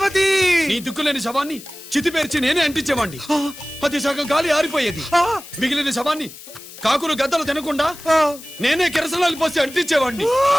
నీ దిక్కులేని శవాన్ని చితిపేర్చి నేనే అంటించేవాడిని. అది సగం గాలి ఆరిపోయేది. మిగిలిన శవాన్ని కాకులు గద్దలు తినకుండా నేనే కిరసనాలు పోసి అంటించేవాడిని.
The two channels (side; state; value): left; noise; hiss, 17 dB below the sound